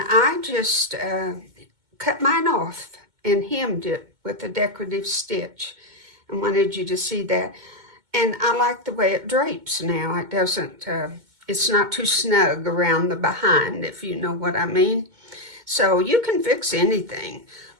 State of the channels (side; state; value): left; late; 2.2 ms